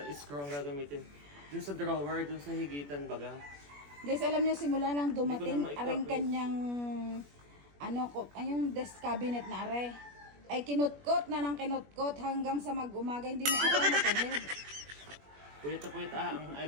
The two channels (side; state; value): left; late; 21 ms